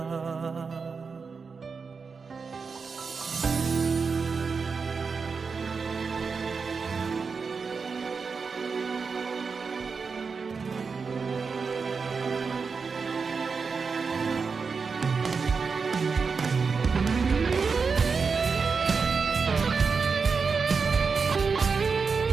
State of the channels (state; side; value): quieter; left; 5.1 dB